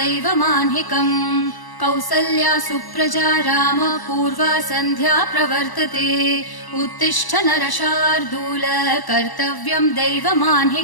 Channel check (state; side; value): late; right; 1.0 ms